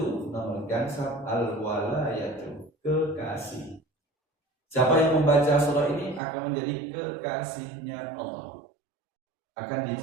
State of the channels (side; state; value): left; drops out; at 6.2 s